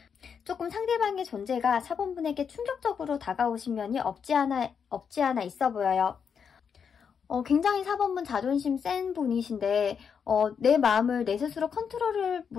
조금 상대방의 존재가 4번분에게 충격적으로 다가오신 면이 없지 않아 있어 보여요. 굉장히 4번분 자존심 센 분이신데 내 마음을 내 스스로 컨트롤을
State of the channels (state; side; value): quieter; right; 6.8 dB